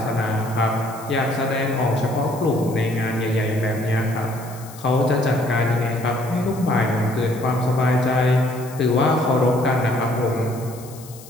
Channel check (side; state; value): left; noise; hiss, 19 dB below the sound